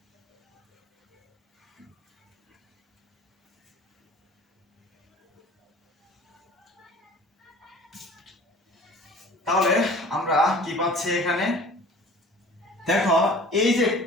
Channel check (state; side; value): normal; both; correlation 0.46